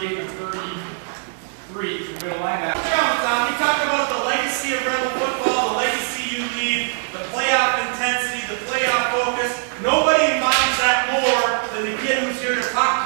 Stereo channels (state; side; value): silent; left; 65 dB below the other